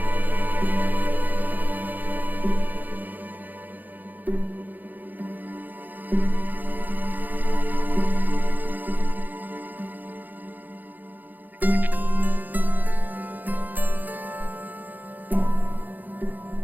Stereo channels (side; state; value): left; late; 0.084 ms